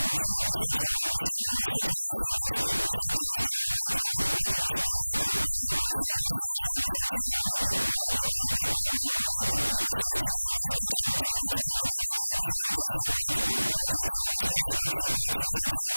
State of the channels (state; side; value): inverted; both; correlation -1.00